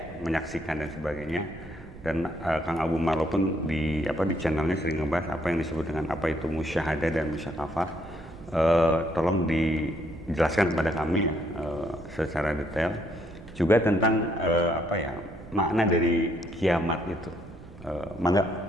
menyaksikan dan sebagainya. Dan Kang Abu Marlo pun di channelnya sering membahas apa yang disebut dengan apa itu musyahadah dan musyakafah. Tolong dijelaskan kepada kami secara detail juga tentang makna dari kiamat itu. Mangga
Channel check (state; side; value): noise; right; rumble, 18 dB below the sound